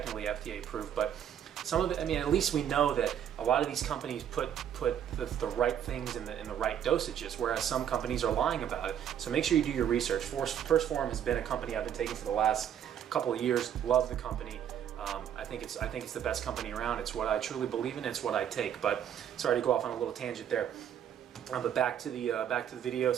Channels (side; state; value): left; quieter; 9.5 dB